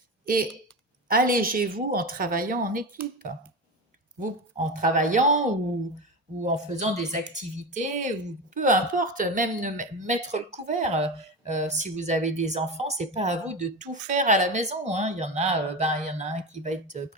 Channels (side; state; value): both; normal; correlation 0.22